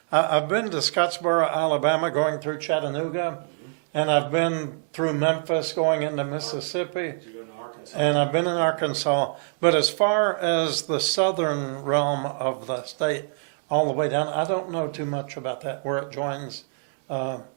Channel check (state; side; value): silent; left; digital silence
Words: I've been to Scottsboro, Alabama, going through Chattanooga, and I've been through Memphis, going into Mississippi, Did you go to Arkansas? and I've been in Arkansas. But as far as the southern realm of the state, all the way down, I don't know too much about that, where it joins, where